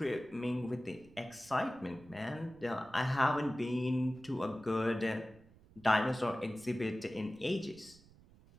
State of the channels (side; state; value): right; noise; rumble, 25 dB below the sound